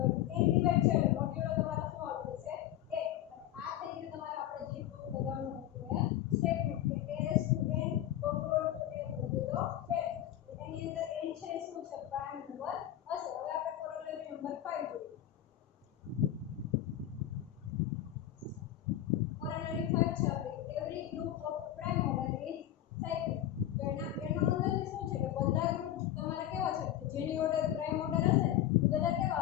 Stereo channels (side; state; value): right; quieter; 12.3 dB